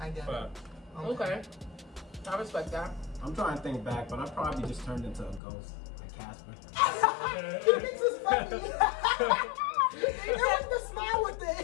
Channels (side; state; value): right; drops out; at 5.4 s